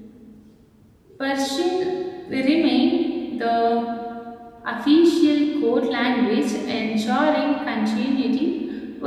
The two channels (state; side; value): identical; both; correlation 1.00